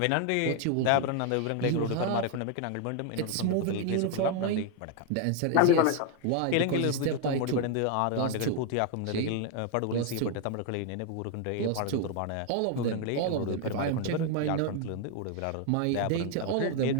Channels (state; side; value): different; both; correlation 0.01